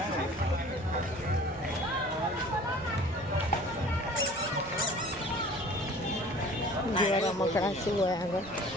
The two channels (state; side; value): normal; both; correlation 0.47